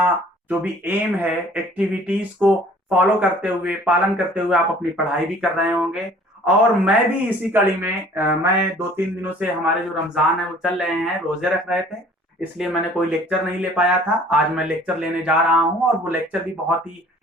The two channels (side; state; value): both; normal; correlation 0.52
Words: जो भी एम है एक्टिविटीज को फॉलो करते हुए पालन करते हुए आप अपनी पढ़ाई भी कर रहे होंगे। और मैं भी इसी कड़ी में मैं 2-3 दिनों से हमारे जो रमजान है वो चल रहे हैं, रोजे रख रहे थे, इसलिए मैंने कोई लेक्चर नहीं ले पाया था। आज मैं लेक्चर लेने जा रहा हूं और वो लेक्चर भी बहुत ही